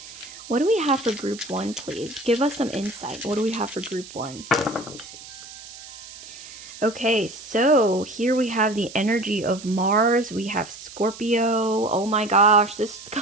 what do we have for group 1, please? Give us some insight. What do we have for group 1? Okay, so here we have the energy of Mars. We have Scorpio. Oh my gosh, this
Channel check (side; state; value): right; noise; hiss, 16 dB below the sound